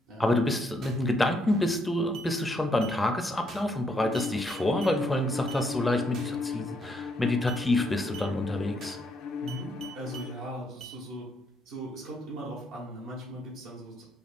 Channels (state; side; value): normal; both; correlation 0.73